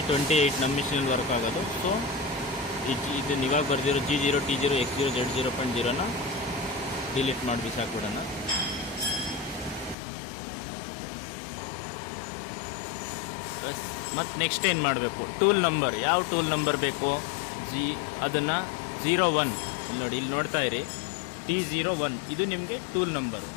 ನಮ್ಮ ಮಿಷಿನಲ್ಲಿ ವರ್ಕ್ ಆಗೋದು. ಸೊ ಇದನ್ನು ಇವಾಗ ಬರ್ದಿರೋ G0, T0, X0, Z 0.0ನ delete ಮಾಡಿ ಬಿಸಾಕ್ಬಿಡೋಣ. ಮತ್ತು ನೆಕ್ಸ್ಟ್ ಏನು ಮಾಡಬೇಕು, ಟೂಲ್ ನಂಬರ್. ಯಾವ ಟೂಲ್ ನಂಬರ್ ಬೇಕು, ಅದನ್ನು 01 ನೋಡಿ, ಇಲ್ಲಿ ನೋಡ್ತಾ ಇರಿ, T01 ಇದು ನಿಮಗೆ ಟೂಲ್ ನಂಬರ್.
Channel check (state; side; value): drops out; right; at 10.0 s